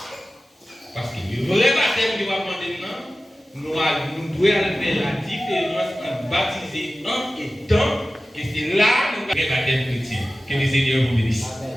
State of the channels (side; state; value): both; normal; correlation 0.95